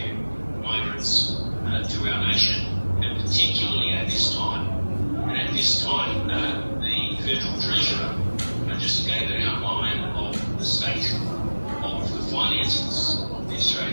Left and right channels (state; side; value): inverted; both; correlation -1.00